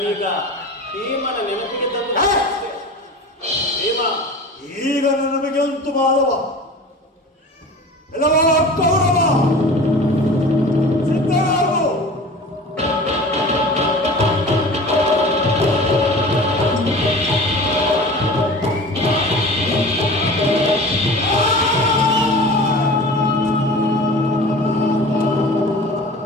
ಭೀಮನ ನೆನಪಿಗೆ ತಂದು ಭೀಮ, ಈಗ ನಮಗೆ ಅಂತು ಮಾಧವ ಎಲ್ಲವ ಕೌರವ ಸಿದ್ಧರಾಗು.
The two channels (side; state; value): both; normal; correlation 0.38